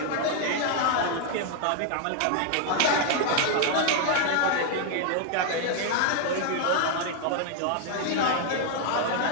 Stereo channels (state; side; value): different; both; correlation 0.00